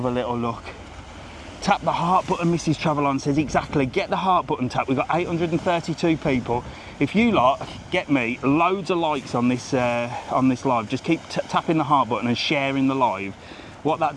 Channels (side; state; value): both; identical; correlation 1.00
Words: a little look. Tap the heart button, Mrs. Travelon says, exactly, get the heart button tap. We've got 832 people. If you lot get me loads of likes on this live, just keep tapping the heart button and sharing the live. What